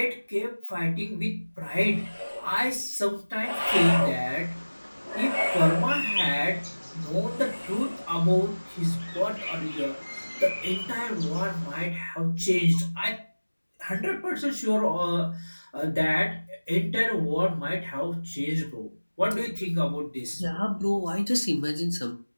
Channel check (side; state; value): both; inverted; correlation -1.00